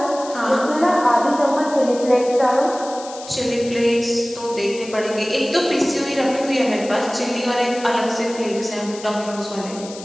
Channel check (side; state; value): left; noise; hiss, 15 dB below the sound